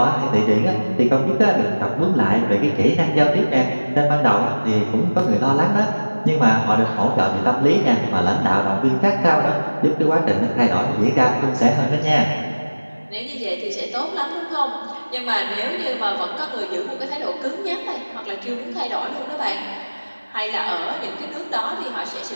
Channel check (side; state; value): both; inverted; correlation -1.00